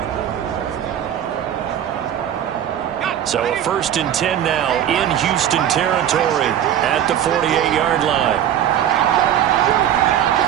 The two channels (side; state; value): left; quieter; 10.4 dB